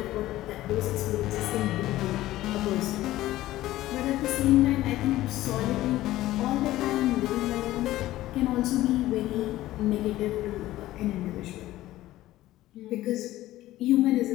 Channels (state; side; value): quieter; right; 15.6 dB